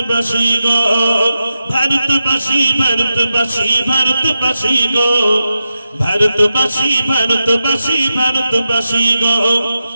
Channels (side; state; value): both; inverted; correlation -0.90